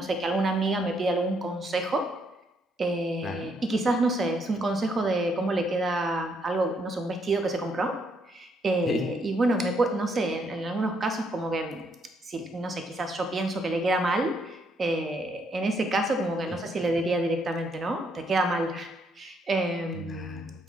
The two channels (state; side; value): normal; both; correlation 0.73